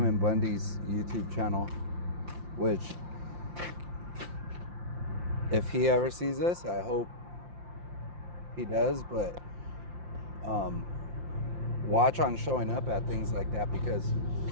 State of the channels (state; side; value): late; left; 5.7 ms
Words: Bundy's YouTube channel, which if he ever sees this, I hope he does, but watch on showing up at things like that, because